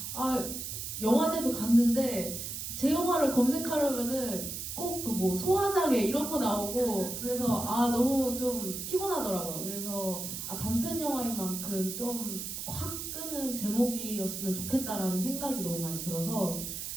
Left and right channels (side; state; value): right; noise; hiss, 6 dB below the sound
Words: 영화제도 갔는데 제 영화를 검색하려면은 꼭 그 뭐 소화장애 이런 거 나오고 그래서 너무 좀 피곤하더라고요. 그래서 단편 영화인 만큼 좀 확 끄는 제목이었으면 좋겠다라는 생각이 너무 많이 들어서